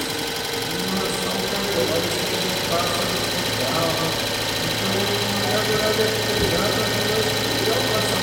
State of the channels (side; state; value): both; identical; correlation 1.00